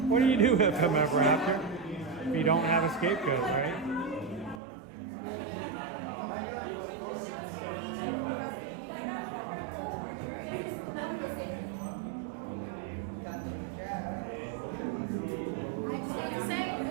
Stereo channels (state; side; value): drops out; left; at 4.6 s